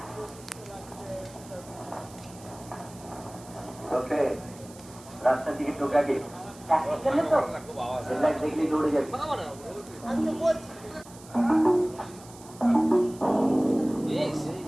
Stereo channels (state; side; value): noise; right; hiss, 21 dB below the sound